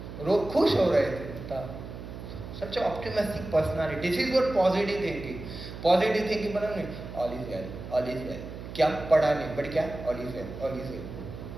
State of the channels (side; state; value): right; noise; hum, 11 dB below the sound